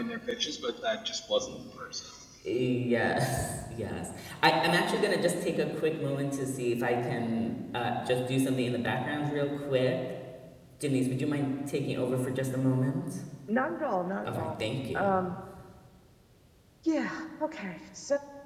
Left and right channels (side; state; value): both; identical; correlation 1.00